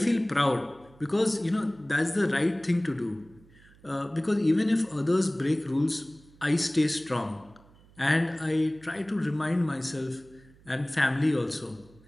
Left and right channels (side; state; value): right; noise; hum, 26 dB below the sound